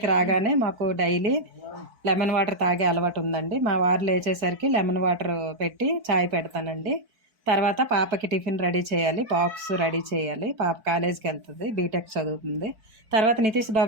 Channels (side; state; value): left; late; 4.6 ms